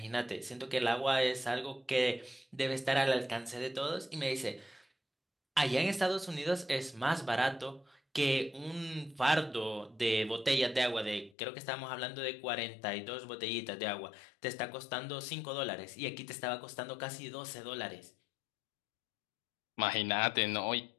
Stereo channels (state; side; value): drops out; right; at 11.4 s